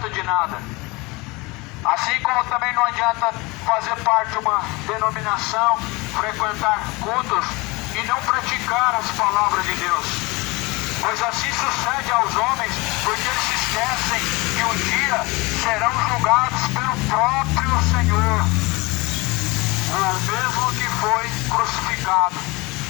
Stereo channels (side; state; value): right; quieter; 24.6 dB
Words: de nada. Assim como também não adianta fazer parte de uma denominação, frequentar cultos e não praticar as palavras de Deus. Pois assim sucede aos homens, porque eles se esquecem que um dia serão julgados pelo próprio Senhor. O mesmo que foi crucificado